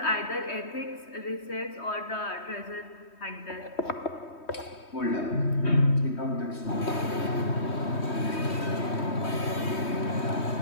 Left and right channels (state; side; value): late; right; 3.2 ms